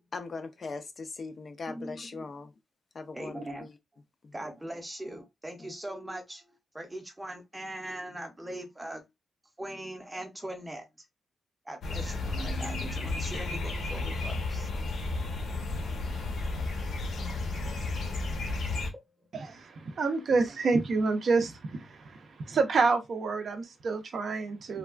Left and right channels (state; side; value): normal; both; correlation 0.83